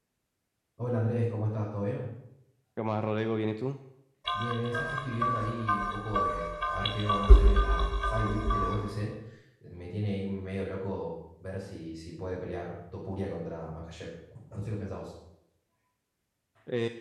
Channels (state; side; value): identical; both; correlation 1.00